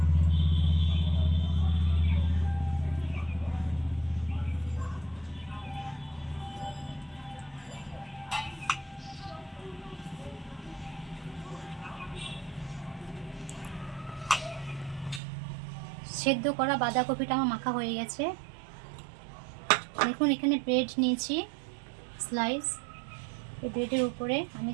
সেদ্ধ করা বাঁধাকপিটা আমার মাখা হয়ে গেছে। দেখুন এখানে ব্রেড নিয়েছি স্লাইস। এই ব্রেডের উপরে আমি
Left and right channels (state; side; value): drops out; left; at 15.2 s